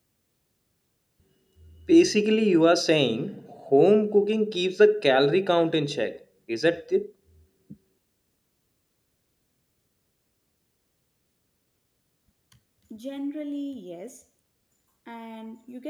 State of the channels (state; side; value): identical; both; correlation 1.00